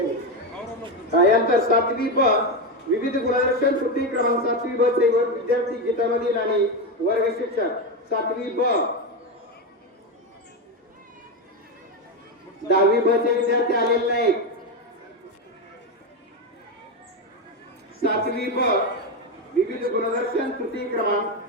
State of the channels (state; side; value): normal; both; correlation 0.11